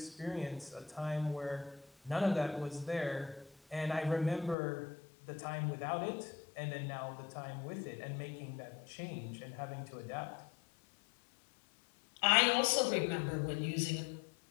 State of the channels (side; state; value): right; drops out; at 4.5 s